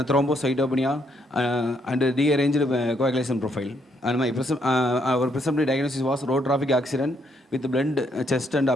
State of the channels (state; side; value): normal; both; correlation 0.73